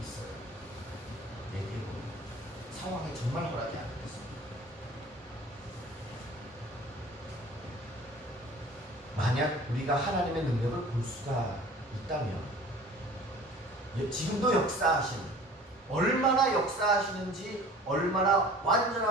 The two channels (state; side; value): normal; both; correlation 0.45